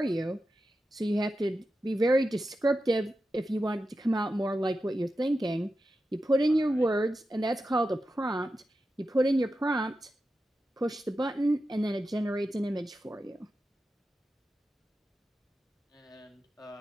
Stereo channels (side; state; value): both; normal; correlation 0.91